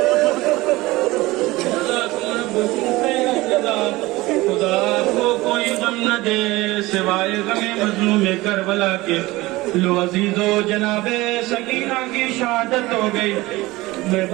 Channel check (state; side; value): quieter; left; 19.8 dB